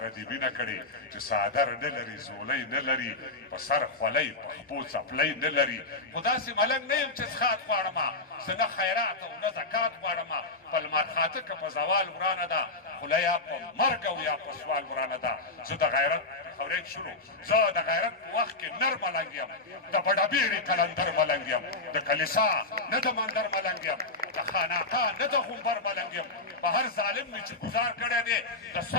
دې مینه کړې چې څادر نه لري زولی نه لري په سر خولۍ په خپو څپلۍ نه لري خو داسې ملنګ نه یم چې څښاک غواړمه زه نه خیرات او نه زکات غواړمه په لمر خاته که په زوال ورانه ده خوله یا په مرګ او یا په سوال ورانه ده زه د غیرت خورید شروع زه د غیرت په وخت کې نر ملنګ یم د بډهبیرې قلندر ملنګ یم د کلیسا نه د مندر ملنګ یم د خانقاه نه د غومبر ملنګ یم په هر ظالم مې چې ګزار کړی دی د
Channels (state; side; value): quieter; right; 3.1 dB